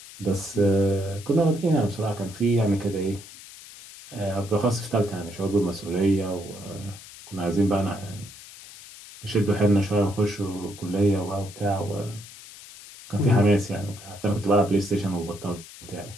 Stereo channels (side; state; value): left; noise; hiss, 17 dB below the sound